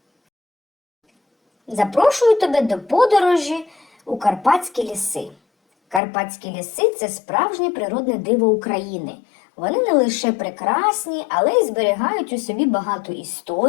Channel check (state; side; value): drops out; right; at 6.0 s